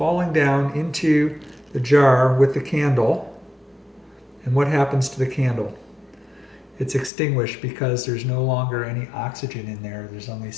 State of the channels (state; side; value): drops out; right; at 7.1 s